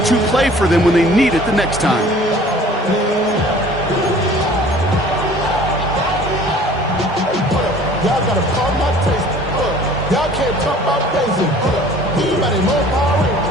play for them when they need it the next time. Y'all gotta call my taste. Y'all can't talk about basic. Anybody more power?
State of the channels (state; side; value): normal; both; correlation 0.50